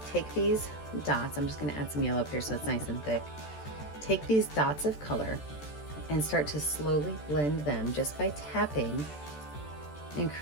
take these dots, I'm just going to add some yellow up here so it's nice and thick. Take these dots of color and start to slowly blend them just by tapping and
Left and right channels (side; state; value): right; late; 14 ms